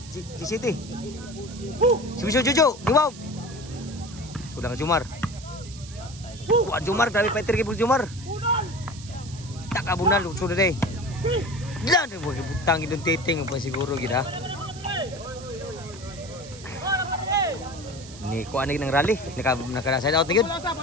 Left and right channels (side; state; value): right; noise; hiss, 17 dB below the sound